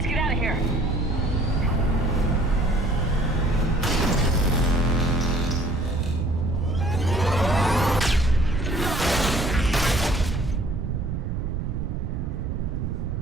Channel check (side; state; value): right; noise; rumble, 3 dB below the sound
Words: get out of here.